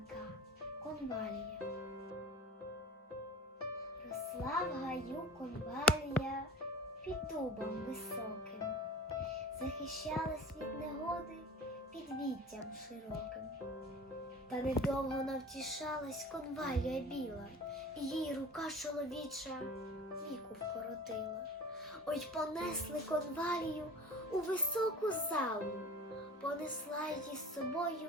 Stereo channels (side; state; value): both; normal; correlation 0.39